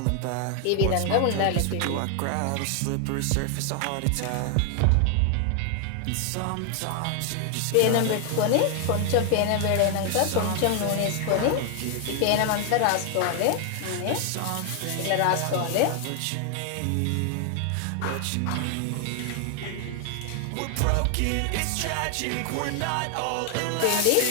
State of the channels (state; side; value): different; both; correlation 0.00